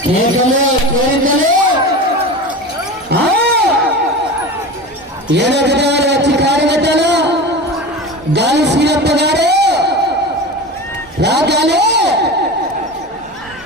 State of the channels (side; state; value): both; normal; correlation 0.29